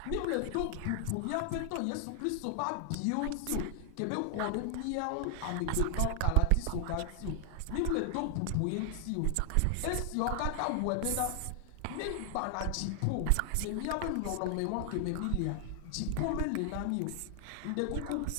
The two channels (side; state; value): both; different; correlation 0.00